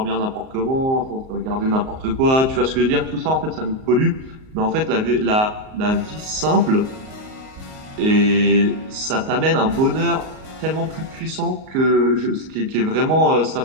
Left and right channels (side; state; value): left; late; 38 ms